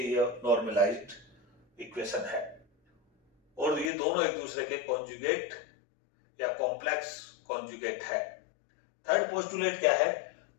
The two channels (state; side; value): drops out; right; at 3.9 s